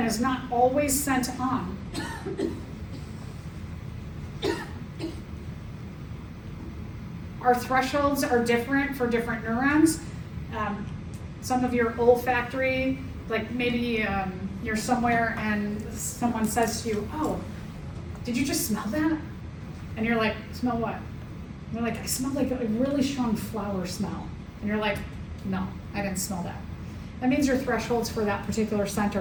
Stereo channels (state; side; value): identical; both; correlation 1.00